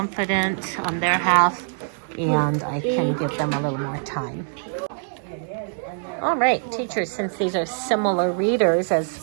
on their half, and I can give them a little more time. All right, teachers, since these are similar readers as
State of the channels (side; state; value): left; silent; digital silence